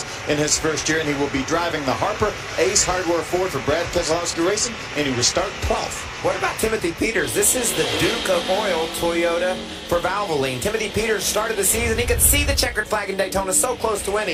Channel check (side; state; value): both; identical; correlation 1.00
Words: in his first year, and he will be driving the Harper Ace Hardware Ford for Brad Keselowski Racing, and he will start 12th. What about Timothy Peters? This is the Duke of Oil Toyota for Valvoline. Timothy Peters started the season. He could see the checkered flag in Daytona, so close to